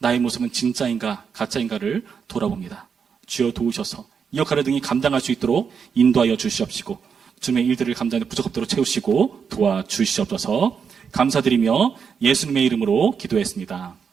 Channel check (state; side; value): quieter; left; 6.5 dB